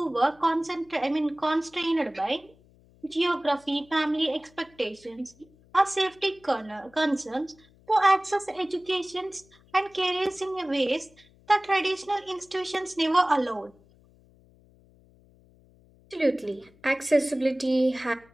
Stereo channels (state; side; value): noise; left; hum, 29 dB below the sound